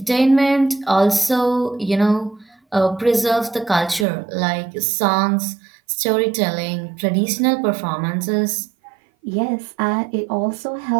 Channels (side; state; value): left; drops out; at 4.0 s